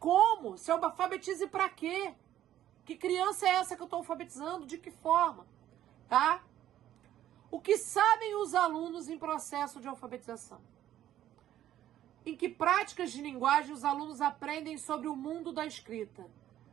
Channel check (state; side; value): quieter; left; 12.2 dB